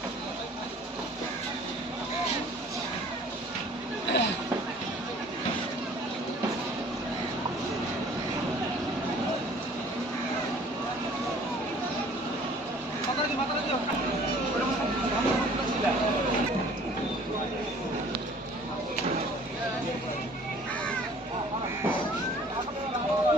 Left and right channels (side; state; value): both; normal; correlation 0.52